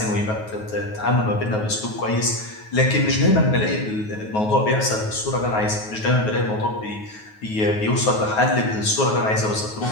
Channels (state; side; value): late; right; 9.4 ms